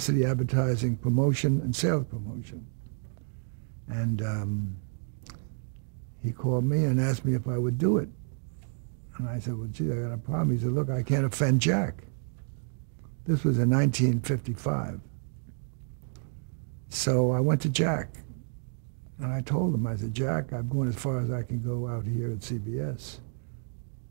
advertising, promotion, and sales promotion. And he called me and asked me if I would do it. And I said, well, gee, I got a problem. He said, look, I can't offend Jack. This was in 1955. So I went to Jack, and I told him, I said, Jack, I'm going as far as I can go out here at CBS.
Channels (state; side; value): silent; left; 58 dB below the other